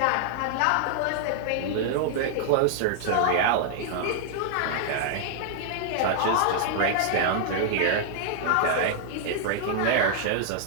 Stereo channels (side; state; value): both; different; correlation -0.01